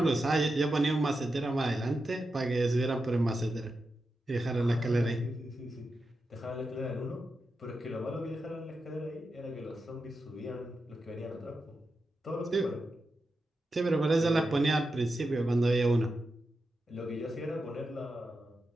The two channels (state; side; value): normal; both; correlation 0.89